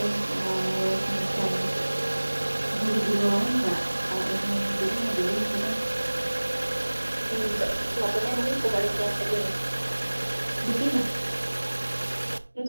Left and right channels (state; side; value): inverted; both; correlation -1.00